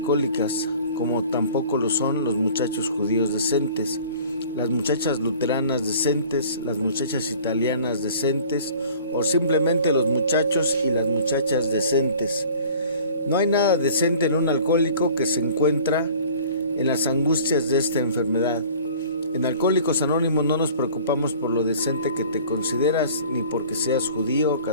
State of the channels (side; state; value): both; inverted; correlation -0.47